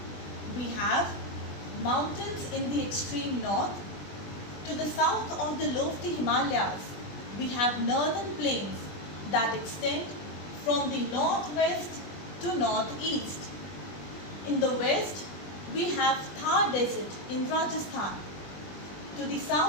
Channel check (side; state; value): right; late; 20 ms